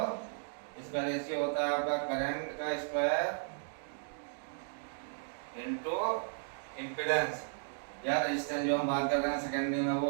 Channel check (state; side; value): silent; left; digital silence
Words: रेशियो होता है आपका करंट का स्क्वायर इनटू इम्पीडेंस या रेजिस्टेंस जो हम बात कर रहे हैं सेकेंडरी में वो